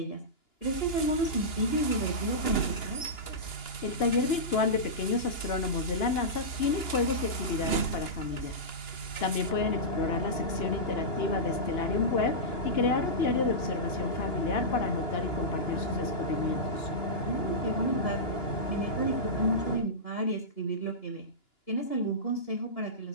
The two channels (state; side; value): late; right; 2.9 ms